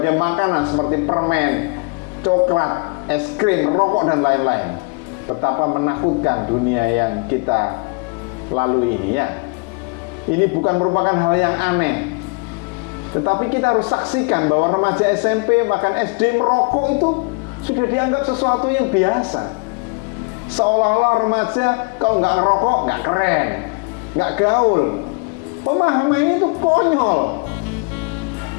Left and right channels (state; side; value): quieter; right; 32.3 dB